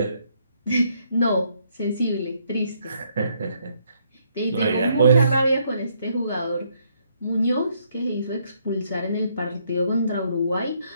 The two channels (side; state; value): both; inverted; correlation -0.71